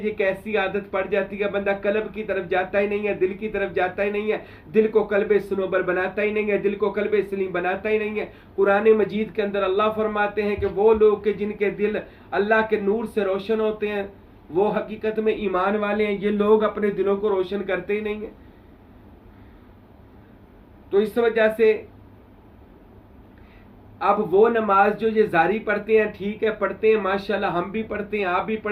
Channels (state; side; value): identical; both; correlation 1.00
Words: कैसी आदत पड़ जाती है, बंदा कल्ब की तरफ जाता ही नहीं है, दिल की तरफ जाता ही नहीं है, दिल को कल्बे सनोबर बनाता ही नहीं है, दिल को कल्बे सलीम बनाता ही नहीं है। कुरान मजीद के अंदर अल्लाह फरमाते हैं कि वो लोग के जिनके दिल अल्लाह के नूर से रोशन होते हैं वो हकीकत में ईमान वाले हैं। ये लोग अपने दिलों को रोशन करते ही नहीं है। तो इस वजह से अब वो नमाज जो ये जारी पढ़ते हैं, ठीक है पढ़ते हैं, माशाल्लाह हम भी पढ़ते हैं, आप भी